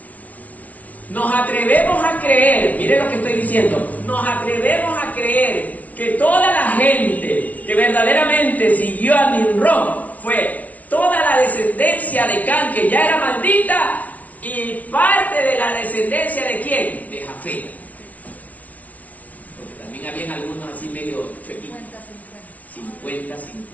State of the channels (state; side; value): late; right; 0.071 ms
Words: Nos atrevemos a creer, mire lo que estoy diciendo, nos atrevemos a creer que toda la gente que verdaderamente siguió a Nimrod fue toda la descendencia de Can, que ya era maldita, y parte de la descendencia de ¿quién? De Jafet. Porque también habían algunos así medio chuequitos.